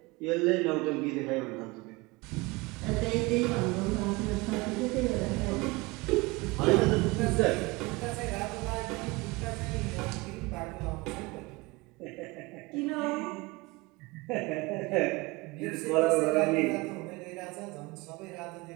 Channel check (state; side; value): quieter; left; 23.7 dB